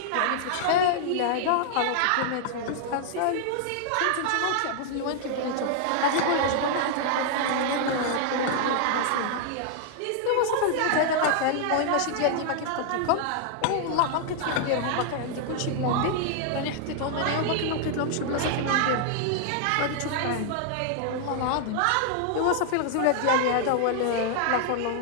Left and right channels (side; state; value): both; different; correlation -0.01